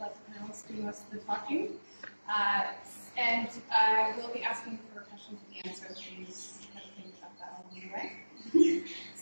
the panelists do most of the talking. And I will be asking for questions at the end, so please think about that along the way.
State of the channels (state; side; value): inverted; both; correlation -1.00